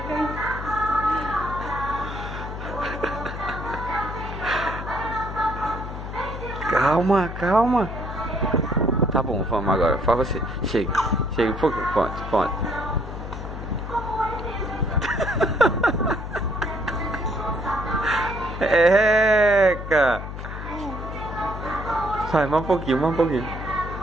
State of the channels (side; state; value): left; noise; hum, 8 dB below the sound